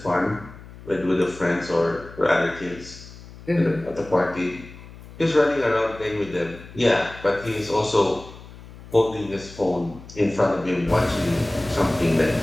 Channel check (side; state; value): left; noise; hum, 18 dB below the sound